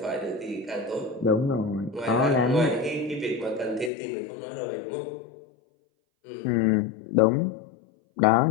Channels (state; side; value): drops out; right; at 3.9 s